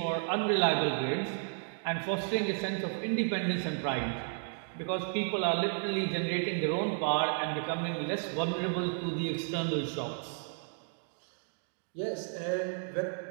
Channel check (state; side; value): silent; left; 56 dB below the other